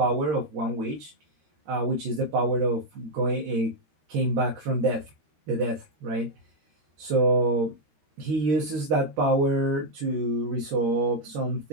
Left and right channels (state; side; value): late; left; 13 ms